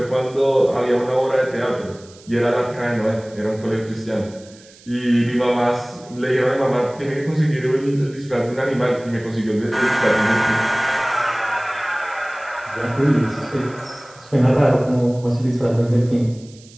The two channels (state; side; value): noise; right; hiss, 24 dB below the sound